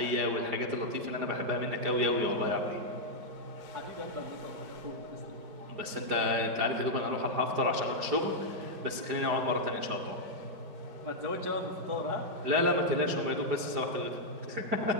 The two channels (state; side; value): late; left; 4.9 ms